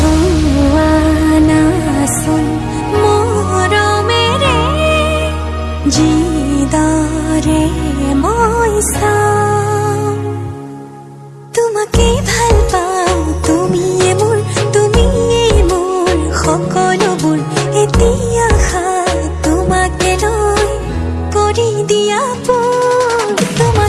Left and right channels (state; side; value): identical; both; correlation 1.00